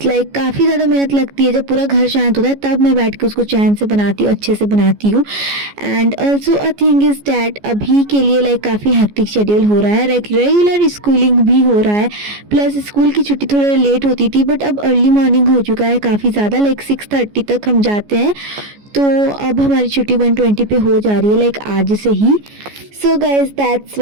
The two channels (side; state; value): left; late; 14 ms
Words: Like काफ़ी ज़्यादा मेहनत लगती है, जब पूरा घर शांत होता है तब मैं बैठ के उसको चैन से बनाती हूँ, अच्छे से बनाती हूँ। And also a thing is that अभी के लिए लाइक काफ़ी हेक्टिक शेड्यूल हो रहा है, लाइक रेगुलर स्कूलिंग भी हो रहा है, प्लस स्कूल की छुट्टी थोड़ा लेट होती थी, बट अब अर्ली मॉर्निंग हो चुका है काफ़ी ज़्यादा, लाइक 6:30 तक हम जाते हैं। तो अब हमारी छुट्टी 1:20 पे हो जा रही है, लाइक आज से ही। So guys, that's